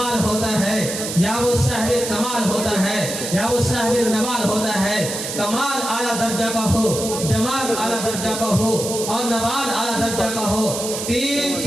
ہوتا ہے، یا وہ صاحب کمال ہوتا ہے، یا وہ صاحب نوال ہوتا ہے۔ کمال اعلیٰ درجہ کا ہو، جمال اعلیٰ درجہ کا ہو اور نوال اعلیٰ درجہ کا ہو۔ 3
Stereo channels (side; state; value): right; noise; hiss, 6 dB below the sound